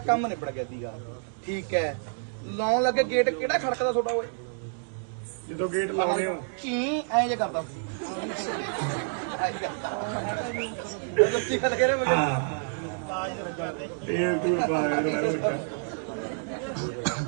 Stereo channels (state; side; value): silent; left; digital silence